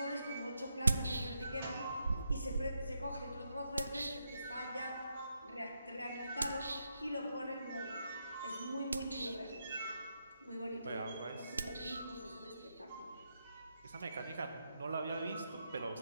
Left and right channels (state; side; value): inverted; both; correlation -0.82